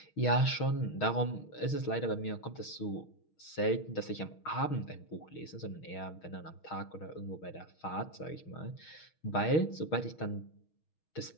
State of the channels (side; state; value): right; late; 6.4 ms